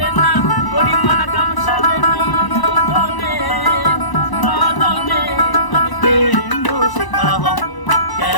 না গরিমান কাম সারে না মদনে মদনে আমি প্রেম রসিকা হব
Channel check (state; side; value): late; right; 1.0 ms